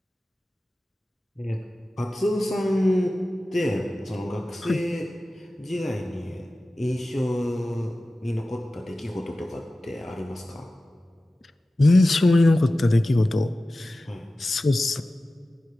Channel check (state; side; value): normal; both; correlation 0.95